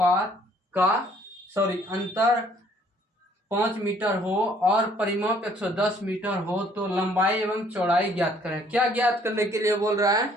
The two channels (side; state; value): both; normal; correlation 0.61